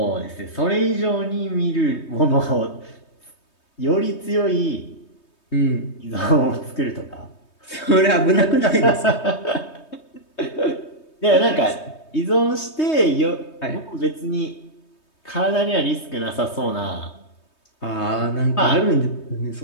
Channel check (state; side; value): late; right; 3.2 ms